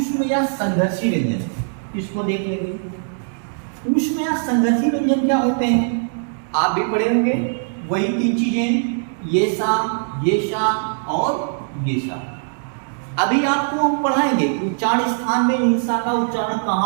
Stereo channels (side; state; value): left; silent; digital silence